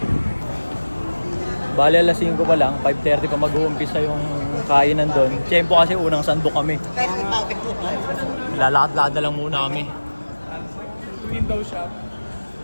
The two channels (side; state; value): both; inverted; correlation -1.00